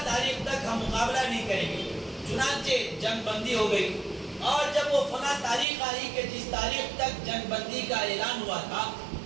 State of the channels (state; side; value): drops out; left; at 5.7 s